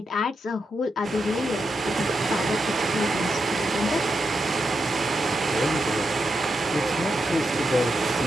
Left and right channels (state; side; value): normal; both; correlation 0.85